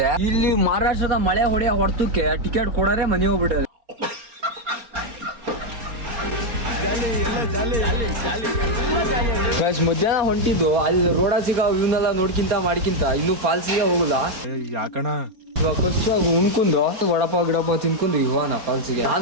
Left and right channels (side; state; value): left; late; 4.3 ms